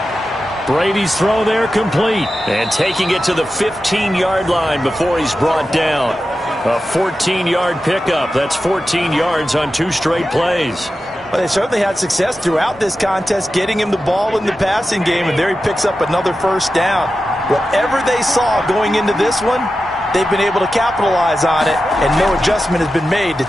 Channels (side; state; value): both; normal; correlation 0.92